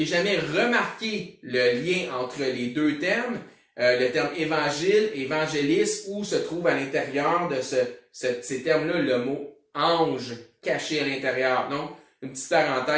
jamais remarqué le lien entre les deux termes, le terme évangile, évangéliste, où se trouve à l'intérieur de ces termes-là le mot ange caché à l'intérieur. Donc, une petite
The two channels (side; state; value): both; identical; correlation 1.00